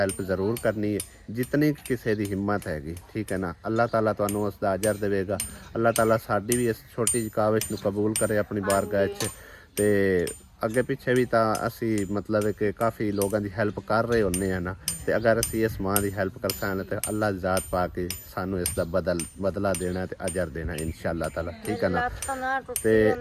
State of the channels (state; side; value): identical; both; correlation 1.00